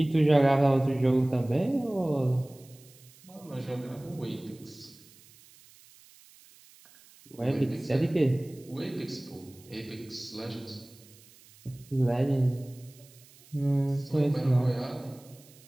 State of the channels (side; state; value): right; noise; hiss, 25 dB below the sound